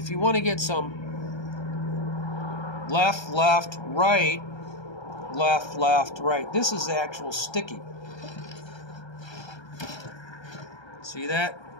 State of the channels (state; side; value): late; right; 1.3 ms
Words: you want to get some left, left, right, left, left, right, this is the actual sticking. See that?